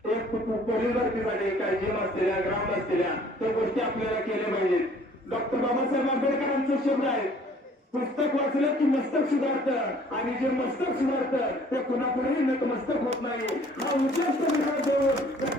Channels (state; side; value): normal; both; correlation 0.55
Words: एक पोलीस भरतीसाठी काही जिम असलेल्या, ग्राउंड असलेल्या त्या गोष्टी आपल्याला केल्या पाहिजेत. डॉक्टर बाबासाहेब आंबेडकरांचा शब्द आहे, पुस्तक वाचलं की मस्तक सुधारतं, आणि जे मस्तक सुधारतं ते कुणापुढेही नतमस्तक होत नाही. हा उद्देश विचार देऊन